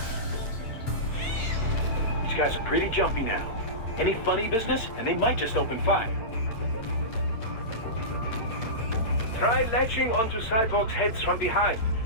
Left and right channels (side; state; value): right; late; 8.8 ms